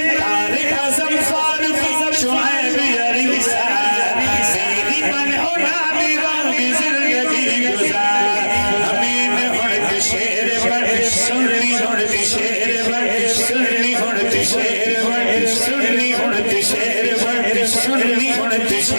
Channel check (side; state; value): both; inverted; correlation -1.00